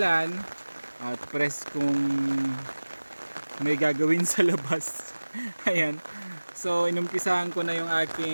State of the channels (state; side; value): inverted; both; correlation -1.00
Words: at press kung may gagawin sa labas. Ayan. So inumpisahan ko na yung